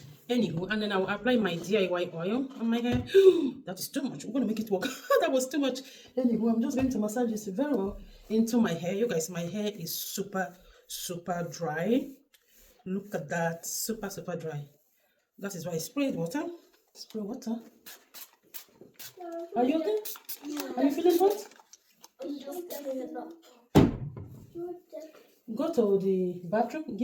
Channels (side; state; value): both; identical; correlation 1.00